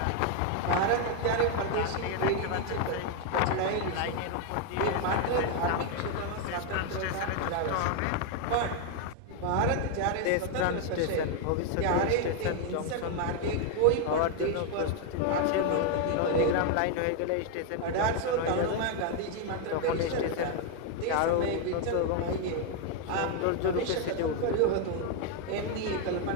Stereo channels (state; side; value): different; both; correlation 0.00